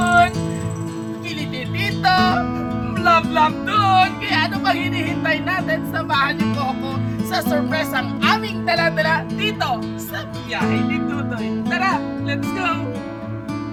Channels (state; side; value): identical; both; correlation 1.00